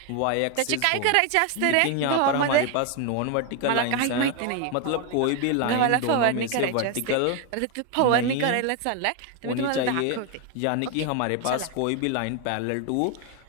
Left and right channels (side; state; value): both; different; correlation 0.01